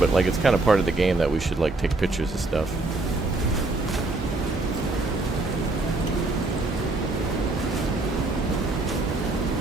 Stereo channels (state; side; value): quieter; left; 3.2 dB